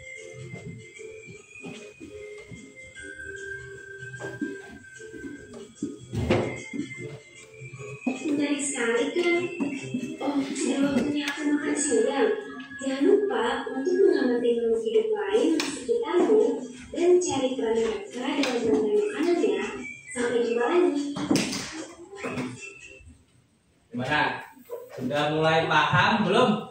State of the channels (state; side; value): identical; both; correlation 1.00